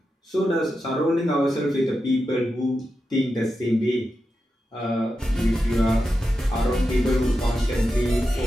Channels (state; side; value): normal; both; correlation 0.89